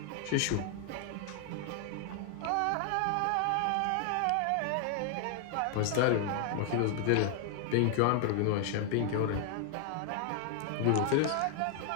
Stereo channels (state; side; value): different; both; correlation 0.00